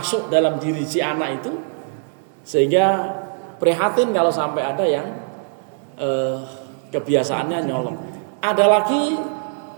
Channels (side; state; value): left; silent; digital silence